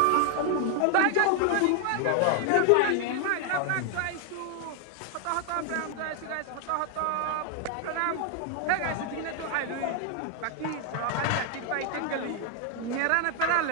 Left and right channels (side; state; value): both; different; correlation 0.00